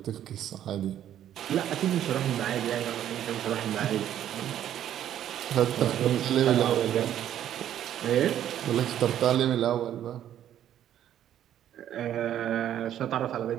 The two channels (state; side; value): quieter; left; 11.0 dB